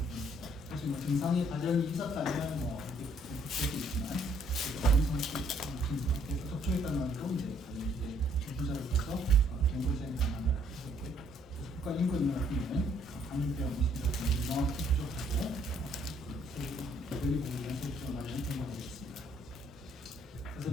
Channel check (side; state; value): both; normal; correlation 0.66